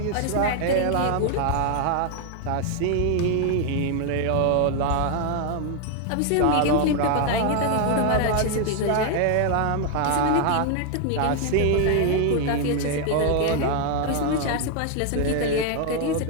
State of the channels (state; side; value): different; both; correlation 0.00